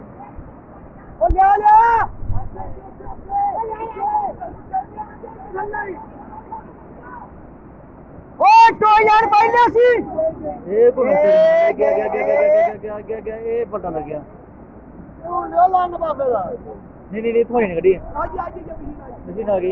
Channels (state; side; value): identical; both; correlation 1.00